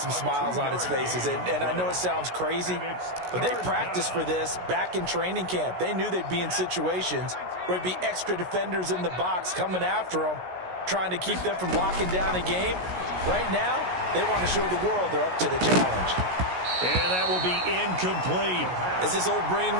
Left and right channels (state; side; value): late; left; 16 ms